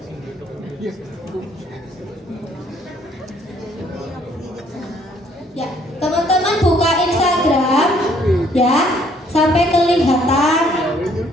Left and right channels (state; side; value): normal; both; correlation 0.64